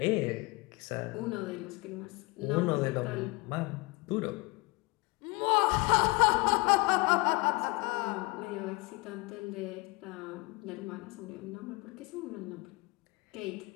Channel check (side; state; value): right; quieter; 26.0 dB